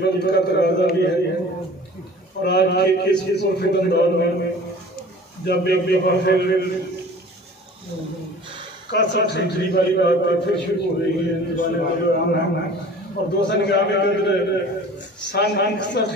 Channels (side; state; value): both; normal; correlation 0.44